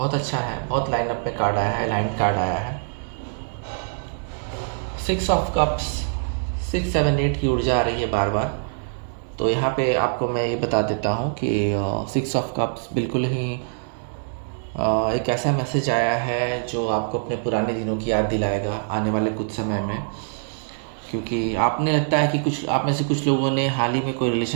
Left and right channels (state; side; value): silent; left; digital silence